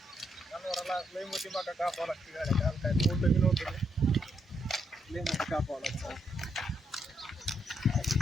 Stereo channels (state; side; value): normal; both; correlation 0.77